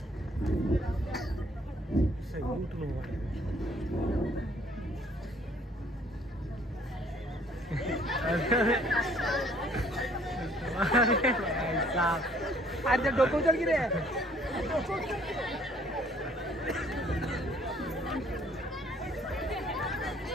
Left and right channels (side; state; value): both; normal; correlation 0.60